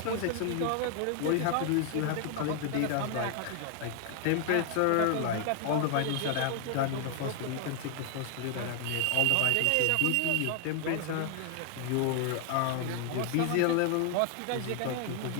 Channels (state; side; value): different; both; correlation 0.00